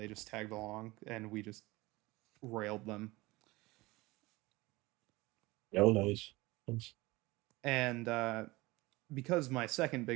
just tagged along and we just railed them. Oh, nice. Nice. And because my second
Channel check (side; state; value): left; quieter; 21.4 dB